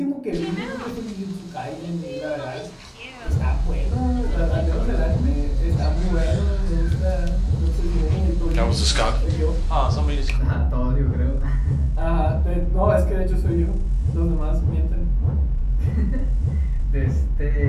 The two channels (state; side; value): identical; both; correlation 1.00